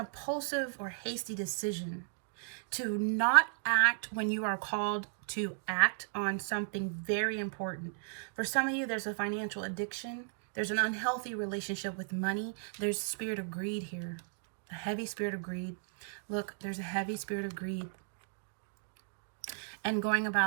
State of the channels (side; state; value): left; silent; digital silence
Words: or hasty decision to not act when you are called to act on something very important. For some of you, there's a financial addiction. There's an unhealthy relationship with money. There's a spirit of greed here, a heavy spirit of greed. Look, there's a heavy spirit of greed. And going